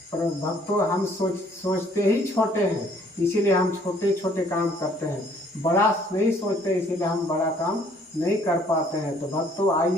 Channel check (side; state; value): both; normal; correlation 0.60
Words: पर भक्तों, हम सोचते ही छोटे हैं, इसीलिए हम छोटे छोटे काम करते हैं, बड़ा नहीं सोचते, इसीलिए हम बड़ा काम नहीं कर पाते हैं। तो भक्तों,